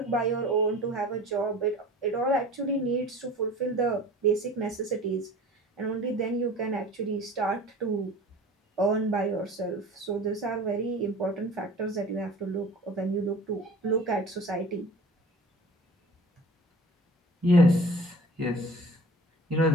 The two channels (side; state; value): both; normal; correlation 0.42